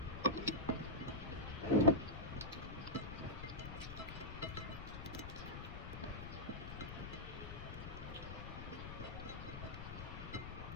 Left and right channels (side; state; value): left; noise; rumble, 7 dB below the sound